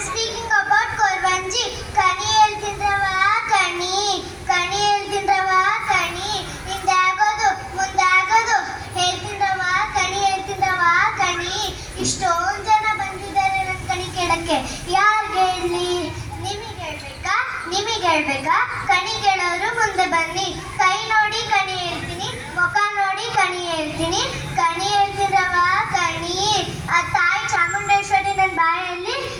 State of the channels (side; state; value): both; identical; correlation 1.00